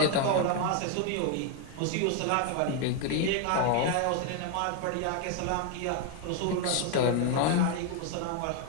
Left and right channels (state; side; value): different; both; correlation 0.01